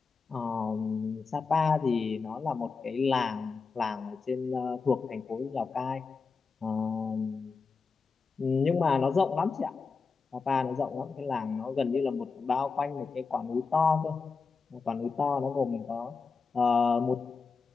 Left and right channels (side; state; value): right; quieter; 4.8 dB